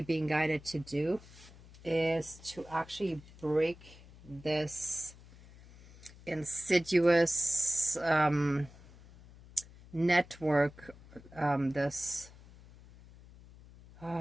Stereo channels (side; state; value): left; noise; hum, 21 dB below the sound